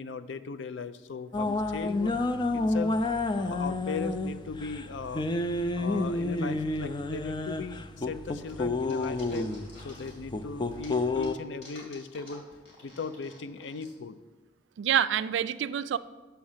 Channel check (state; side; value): normal; both; correlation 0.46